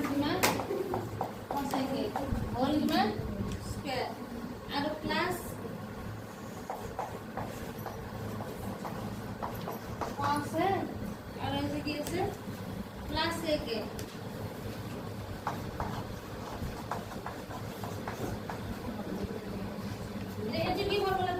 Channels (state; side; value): identical; both; correlation 1.00